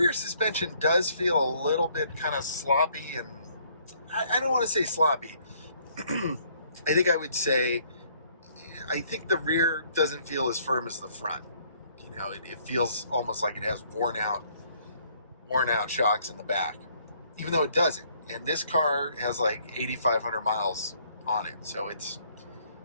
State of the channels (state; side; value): inverted; both; correlation -0.64